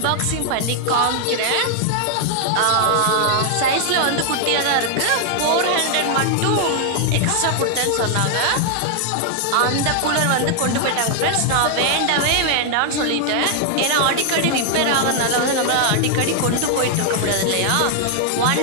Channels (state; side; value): different; both; correlation 0.00